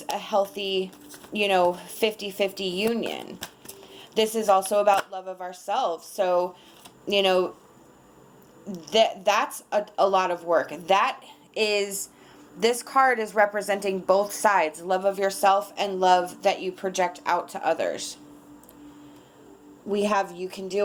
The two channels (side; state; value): both; identical; correlation 1.00